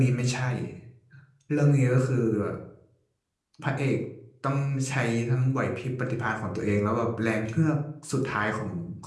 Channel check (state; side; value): identical; both; correlation 1.00